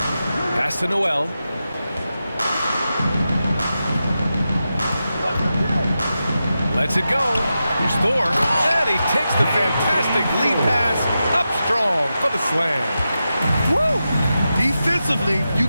Pass to Noel. Lets it go. Here's Thor. And he takes the fantastic lead pass up strong for the slam. Woo! Defensively, you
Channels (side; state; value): both; inverted; correlation -0.90